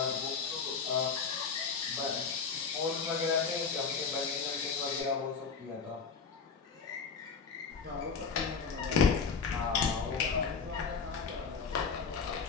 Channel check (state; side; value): quieter; right; 5.5 dB